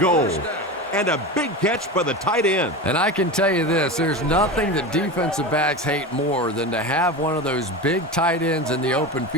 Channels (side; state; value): both; normal; correlation 0.25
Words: And a big catch by the tight end. And I can tell you this, there's nothing that defensive backs hate more than to have one of those big tight ends in the open